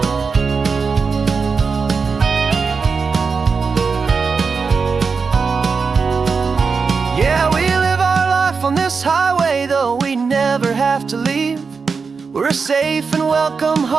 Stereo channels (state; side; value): quieter; left; 5.1 dB